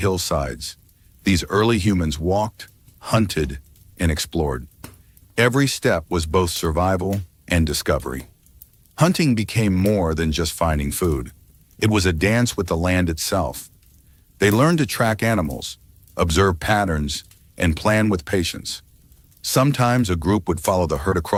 these early humans walked, hunted, and explored. Every step was both survival and discovery. Hunting became more than just finding food. It was a dance with the land itself. They learned to track animals, observe patterns, and plan with patience. Sometimes a group would follow the herd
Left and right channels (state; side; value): identical; both; correlation 1.00